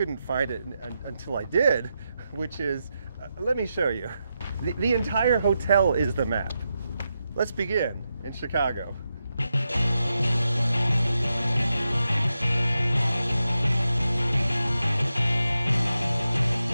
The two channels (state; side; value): inverted; both; correlation -0.87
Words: find it until I did, which is, let me show you. The entire hotel is the map. Let's begin in Chicago.